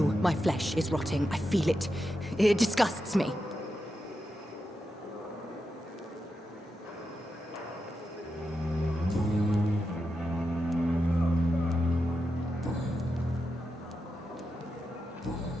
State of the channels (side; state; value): both; normal; correlation 0.88